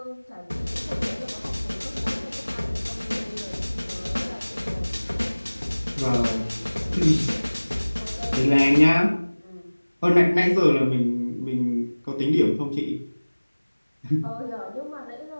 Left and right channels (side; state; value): both; inverted; correlation -1.00